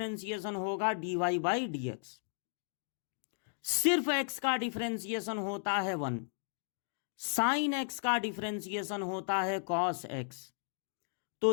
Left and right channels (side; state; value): right; silent; digital silence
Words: होगा dy बाई dx, सिर्फ x का डिफरेंशिएशन होता है 1, साइन x का डिफरेंशिएशन होता है कॉस x। तो